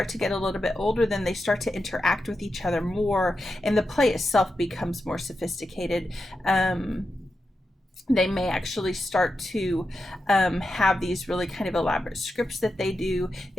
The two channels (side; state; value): both; normal; correlation 0.89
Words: to get a little bit older, then they start to interact with each other more, and the play itself becomes more sophisticated. They may actually start to have these really kind of elaborate scripts that they do.